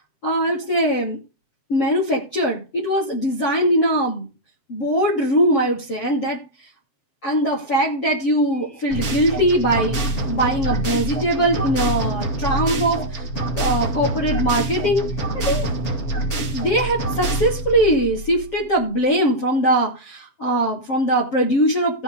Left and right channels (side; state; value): right; late; 7.7 ms